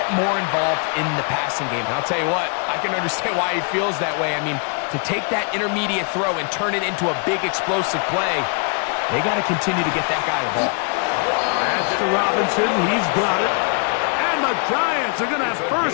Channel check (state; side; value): quieter; right; 39.2 dB